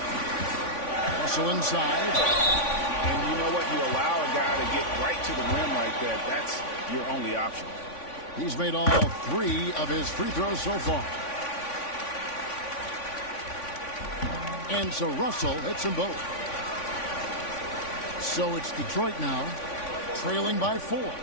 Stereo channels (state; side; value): late; right; 3.5 ms